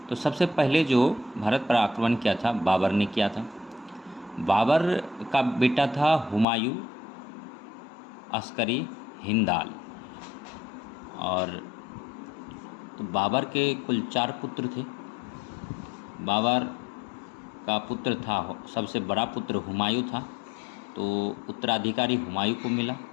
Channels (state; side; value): drops out; right; at 6.5 s